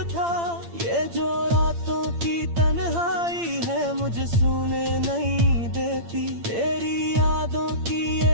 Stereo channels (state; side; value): late; left; 8.8 ms